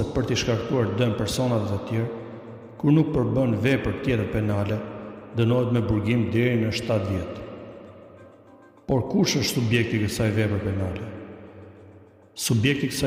për t'i shkaktuar dëm personave të tjerë, kur nuk përbën vepër tjetër penale, dënohet me burgim deri në 7 vjet. Por kush është subjekti i kësaj vepre penale? Subjekti i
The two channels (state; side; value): identical; both; correlation 1.00